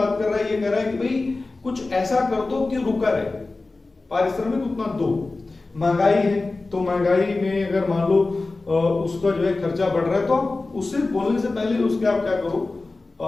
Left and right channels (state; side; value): quieter; right; 3.4 dB